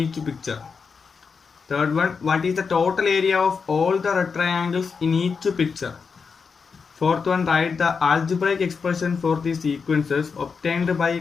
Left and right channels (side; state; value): right; quieter; 5.4 dB